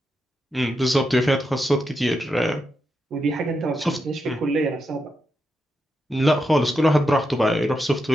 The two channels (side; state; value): both; normal; correlation 0.85